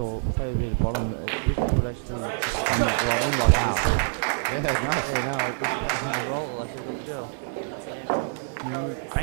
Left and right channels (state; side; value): silent; left; digital silence